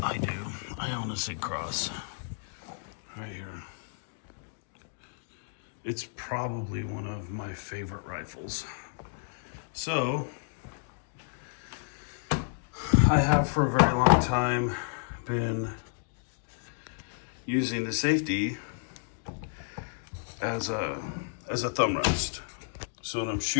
I do. I own a Sig Cross. Right here. It's probably one of my favorite rifles. So, I have for a very long time been using the safety as a thumb rest. So when I'm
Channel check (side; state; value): right; silent; digital silence